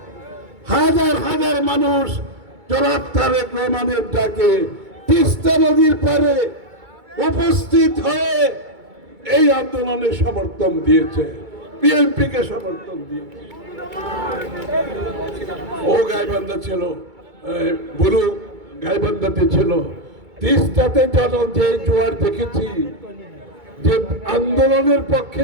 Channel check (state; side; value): late; left; 2.2 ms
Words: হাজার হাজার মানুষ জনাব তারেক রহমানের ডাকে তিস্তা নদীর পাড়ে উপস্থিত হয়ে এই আন্দোলনে সমর্থন দিয়েছে, বিএনপিকে সমর্থন দিয়েছে। ও গাইবান্ধা ছিল, বুড়ো গাইবান্ধাতে ছিল। তিস্তাতে যে জোয়ার দেখেছি, যে আন্দোলনের পক্ষে